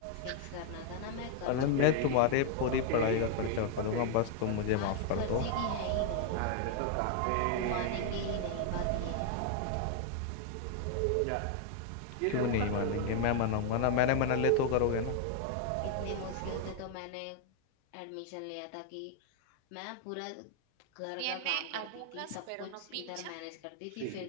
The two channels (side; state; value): both; different; correlation 0.00